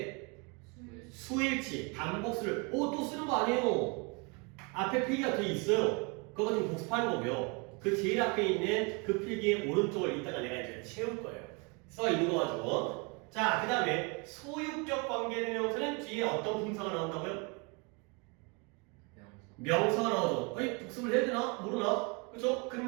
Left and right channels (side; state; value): left; quieter; 31.1 dB